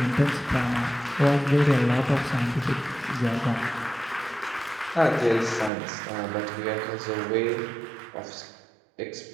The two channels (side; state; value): left; drops out; at 5.7 s